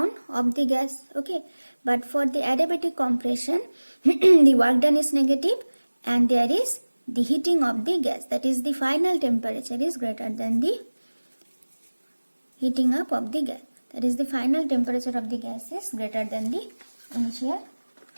of the gas. Okay, but for the adiabatic compression, the work done is negative, and there is the heating of the gas, that is the final temperature is greater than the heating up of the gas. That is the final temperature of the gas is greater than the initial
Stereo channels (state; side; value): inverted; both; correlation -1.00